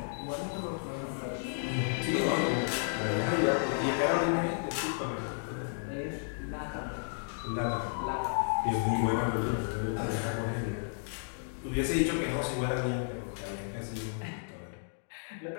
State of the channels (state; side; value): silent; right; digital silence